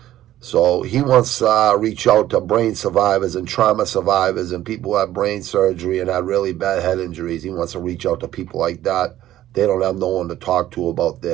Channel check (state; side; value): quieter; left; 13.4 dB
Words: So he wants to reach out to brain survivors and trauma survivors and people who have brain surgery and had really bad head injuries. He wants to reach out to people like that. They don't have no one to talk to about